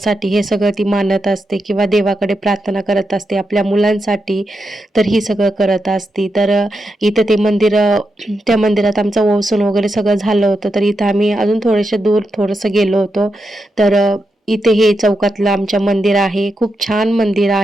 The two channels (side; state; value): both; normal; correlation 0.86